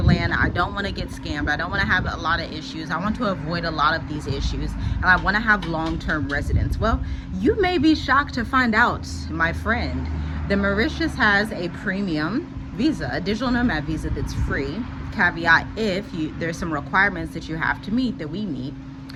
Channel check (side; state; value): both; identical; correlation 1.00